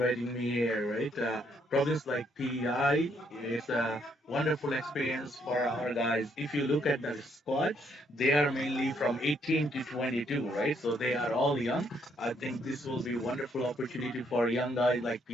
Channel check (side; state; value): both; normal; correlation 0.71